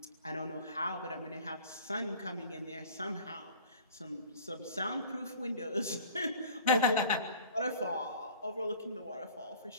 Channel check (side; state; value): both; inverted; correlation -0.47